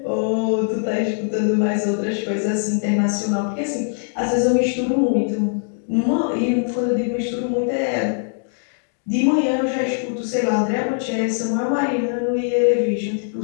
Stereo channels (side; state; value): right; silent; digital silence